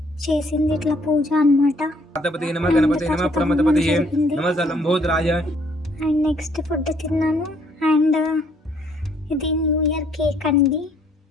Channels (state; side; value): normal; both; correlation 0.65